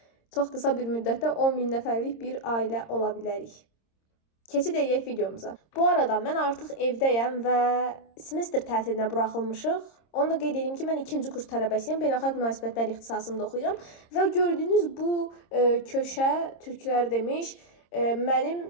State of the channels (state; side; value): late; right; 26 ms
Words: çox qısa bir müddətdə 10 min nəfərlik bir ailə ola bilərik. Keçid edək videomuza. Bu arada mən artıq evdəyəm və semestr tətilinə buraxılmışıq. Onu da qeyd edeyim ki, mən 2-ci kurs tələbəsiyəm. Beynəlxalq münasibətlər ixtisasında oxuyuram. Və gördüyünüz bu köşə, türklər demiş, mənim